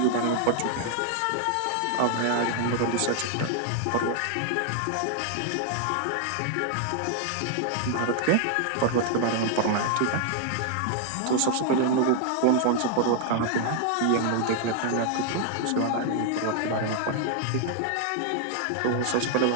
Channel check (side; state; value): both; different; correlation 0.00